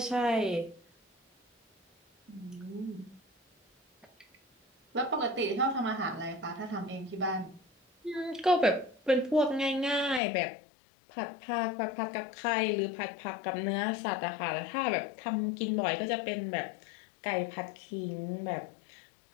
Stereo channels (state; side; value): drops out; right; at 10.2 s